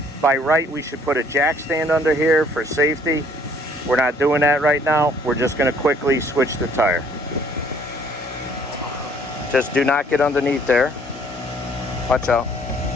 By right, we should put a jack stand under here for safety. We're not doing that right now. We're just gonna quickly switch the tire. Just do not get underneath there. Watch out.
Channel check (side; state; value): both; normal; correlation 0.60